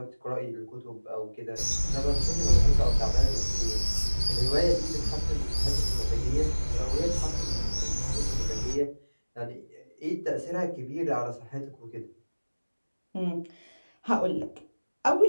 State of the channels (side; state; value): both; inverted; correlation -1.00